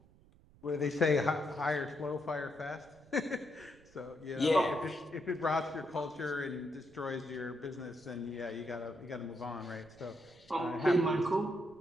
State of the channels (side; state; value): right; noise; rumble, 26 dB below the sound